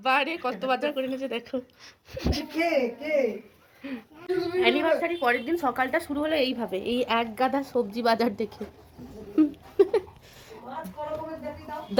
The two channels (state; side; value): identical; both; correlation 1.00